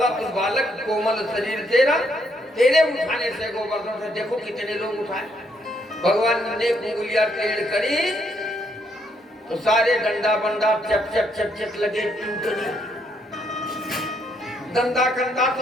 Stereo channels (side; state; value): both; normal; correlation 0.73